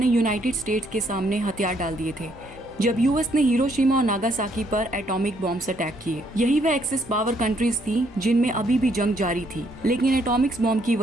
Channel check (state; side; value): noise; right; rumble, 24 dB below the sound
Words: यूनाइटेड स्टेट्स के सामने हथियार डाल दिए थे जब यूएस ने हिरोशिमा और नागासाकी पर एटॉमिक बॉम्ब्स अटैक किए। यही वह एक्सिस पावर कंट्रीज थी जिनमें अभी भी जंग जारी थी, लेकिन एटॉमिक्स बॉम्ब की